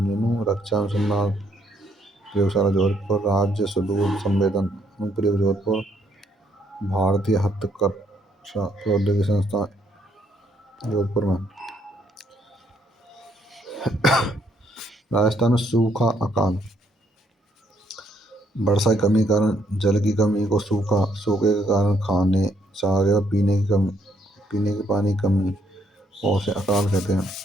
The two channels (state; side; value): normal; both; correlation 0.70